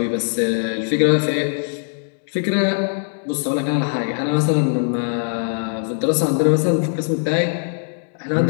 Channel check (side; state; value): right; silent; digital silence